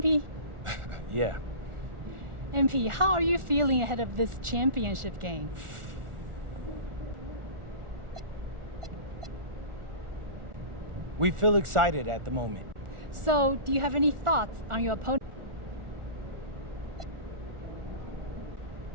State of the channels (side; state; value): left; late; 1.4 ms